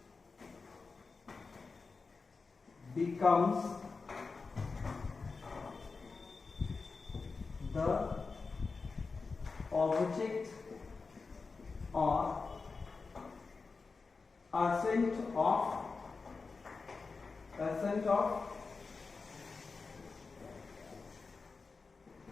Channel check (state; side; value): quieter; right; 4.4 dB